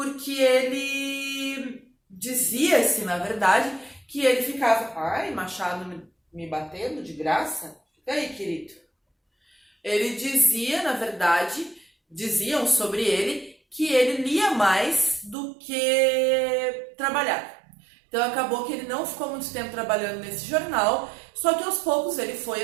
ele dizia-se, na verdade, que ele ficava, ai, Machado me batendo de graça? Fica aí, querido. Ele dizia, na verdade, diziam sobre ele que ele lia mais do que trabalhava. Então acabou que ele não ficou muito tempo trabalhando nesse jornal, só que aos poucos ele foi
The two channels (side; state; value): left; drops out; at 15.4 s